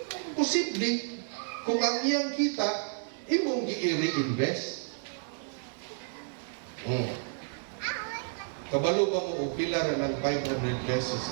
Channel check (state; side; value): silent; left; 57 dB below the other